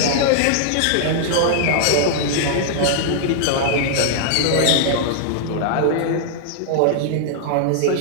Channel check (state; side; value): different; both; correlation -0.01